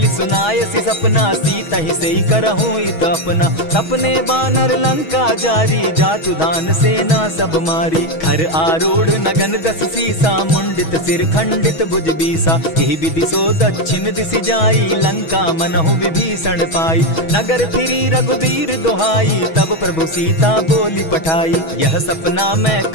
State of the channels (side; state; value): right; late; 6.2 ms